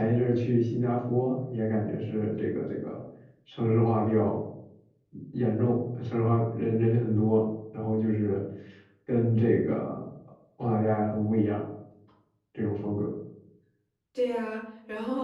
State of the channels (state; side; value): identical; both; correlation 1.00